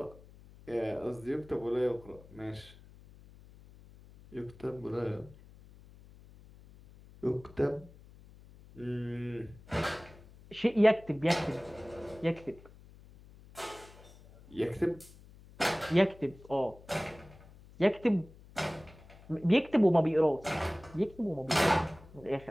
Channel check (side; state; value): left; noise; hum, 22 dB below the sound